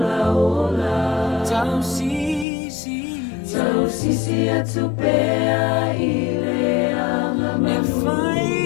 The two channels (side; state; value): right; drops out; at 2.5 s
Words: tau sisi atupea ile angama e